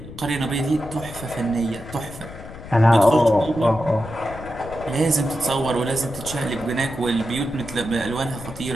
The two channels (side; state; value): left; noise; rumble, 14 dB below the sound